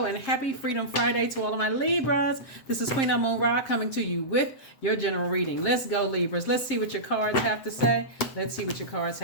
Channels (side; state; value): right; late; 7.5 ms